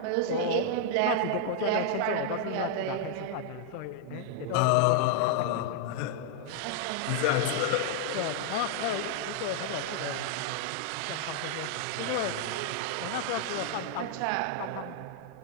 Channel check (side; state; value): both; different; correlation 0.00